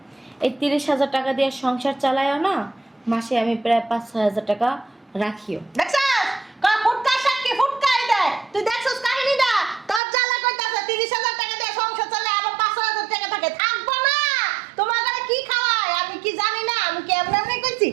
এই 30,000 টাকা দিয়ে সংসার চালায়ও না, মাসে আমি প্রায় 5-6,000 টাকা রাখিও। দেখছস কয় ফুটকা সাক্ষী ফুটকাই দেয়। তুই দেখছস কাহিনীটা? তোর জ্বালা কইতাছে 30,000 টাকা দিয়ে সংসার চালায় আবার 5,000 টাকা থাকে, থাকবো না। তোমার ঘরে কি খাওয়ায় আমি কি জানি না? আমি কি এমনি এমনি কইছি?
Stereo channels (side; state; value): left; drops out; at 10.0 s